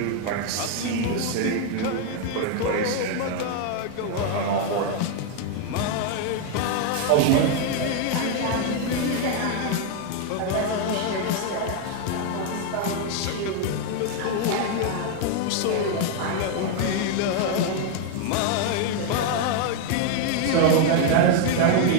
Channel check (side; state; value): both; different; correlation 0.00